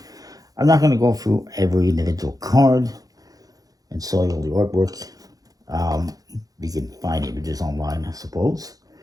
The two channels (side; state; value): left; late; 0.18 ms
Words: I'm not going to go through every individual card and show you all the artwork. You can find images online, I suppose.